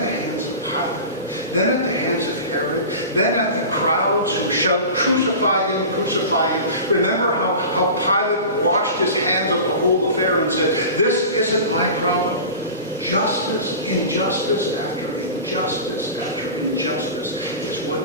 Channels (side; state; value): both; inverted; correlation -0.33